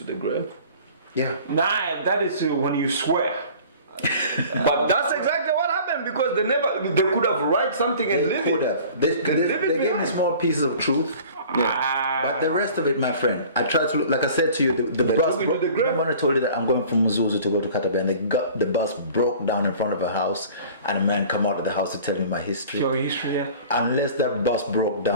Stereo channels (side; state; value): both; inverted; correlation -0.46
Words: the grave." Yeah. Nah, that is when you swear. But that's exactly what happened because they could have write something and They live could it. have. They live it gave me behind. small pieces of truth. Ah. But the rest of it, my friend, I tried to look, like I said to you, the bus. took you to the grave. Remember when I told you that I'm going from Muzuzu to go to Katabe, and the bus broke down in front of a house, and a man come out of the house to tell me my history. Your history, yeah. Unless that bus broke